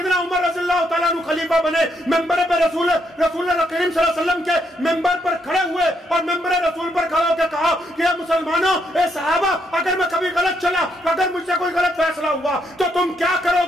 عمر رضی اللہ تعالیٰ عنہ خلیفہ بنے، ممبر پہ رسول اللہ کریم صلی اللہ علیہ وسلم کے ممبر پر کھڑے ہوئے اور ممبر رسول پر کھڑے ہو کے کہا کہ اے مسلمانوں، اے صحابہ، اگر میں کبھی غلط چلا، اگر مجھ سے کوئی غلط فیصلہ ہوا تو تم کیا کرو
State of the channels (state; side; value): normal; both; correlation 0.76